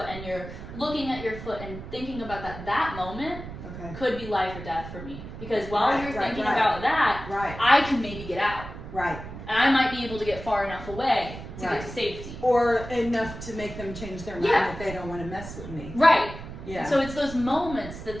and you're looking at your foot and thinking about that moment Okay. could be life or death for me. Because while Right, you're right, thinking right. about that, Right. I can maybe get out. Right. And I might be able to get far enough away to Right. get to safety. Or enough to make them change their mind Yeah. that they don't want to mess with me. Right. Yeah. So it's those moments that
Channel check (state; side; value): noise; right; rumble, 11 dB below the sound